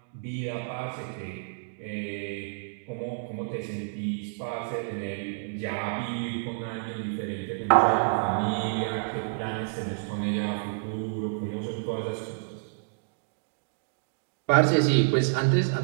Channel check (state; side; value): silent; left; digital silence